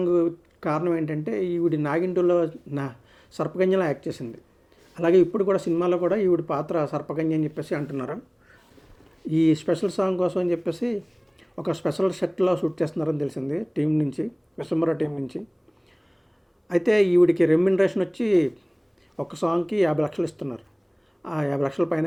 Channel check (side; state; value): both; identical; correlation 1.00